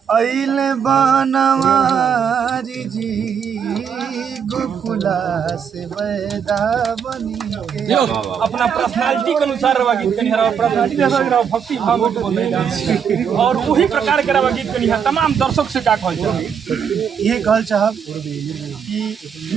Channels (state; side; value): quieter; left; 7.4 dB